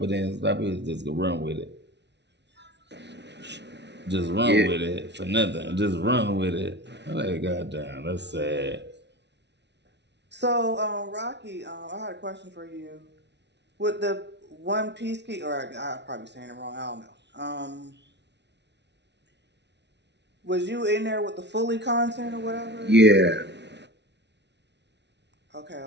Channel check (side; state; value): left; late; 0.50 ms